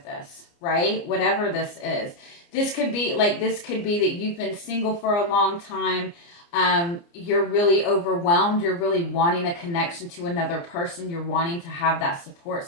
this, right? Whatever this is. This could be that you've been single for a long time. You're really overwhelmed. You're really wanting a connection to another person. You're wanting to have that support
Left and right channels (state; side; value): late; right; 29 ms